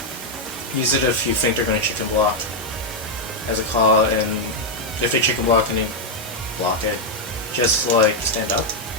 use it if you think they're going to chicken block as a call, and if they chicken block and you block it, just like stand up.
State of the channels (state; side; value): normal; both; correlation 0.00